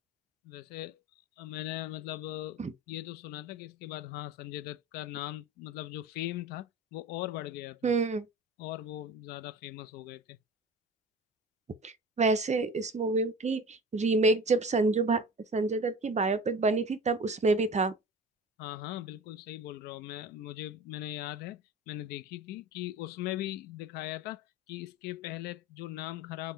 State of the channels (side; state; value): both; normal; correlation 0.35